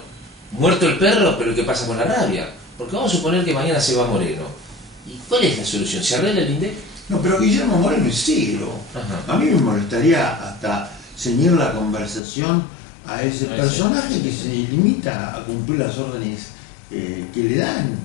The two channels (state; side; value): drops out; right; at 12.2 s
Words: muerto el perro, pero ¿qué pasa con la rabia? Porque vamos a suponer que mañana se va Moreno. ¿Y cuál es la solución? ¿Se arregla el INDEC? No, pero Guillermo Moreno es ciego. A mí me molestaría hasta ceñir la conversación a ese personaje que se limita a cumplir las órdenes que le dan,